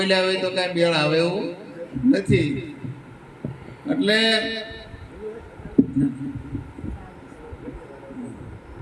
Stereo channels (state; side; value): identical; both; correlation 1.00